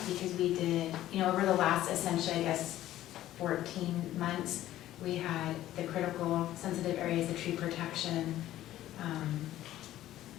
because we did, over the last, essentially, I guess, 14 months, we had the critical sensitive areas, the tree protection,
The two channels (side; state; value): right; quieter; 13.8 dB